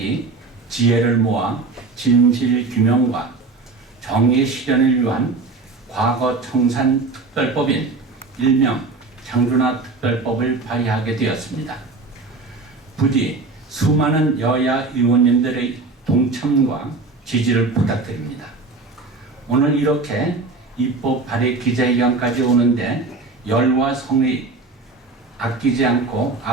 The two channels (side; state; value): left; quieter; 3.7 dB